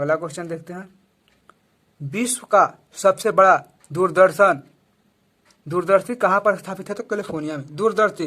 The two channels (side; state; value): both; identical; correlation 1.00